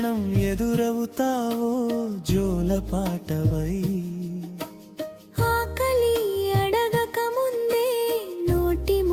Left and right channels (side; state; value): both; identical; correlation 1.00